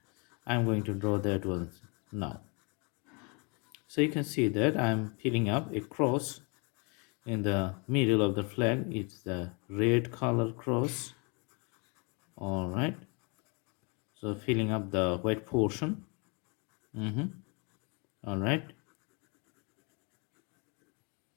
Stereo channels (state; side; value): quieter; right; 32.7 dB